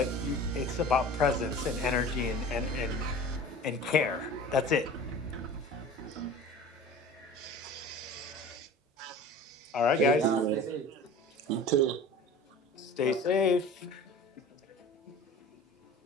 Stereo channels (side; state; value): both; normal; correlation 0.39